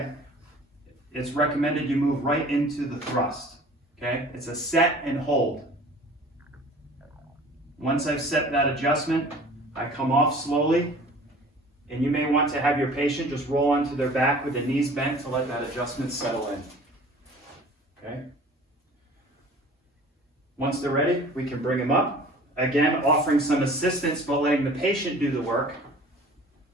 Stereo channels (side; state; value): both; normal; correlation 0.46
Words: it's recommended you move right into the thrust, okay? It's a set and hold. Once I've set that adjustment, I come off slowly, and you may want to have your patient just roll onto their back with the knees bent to let that adjustment settle in, okay? Once they're ready, we can bring them up. Again, offering some assistance, but letting the patient do the work.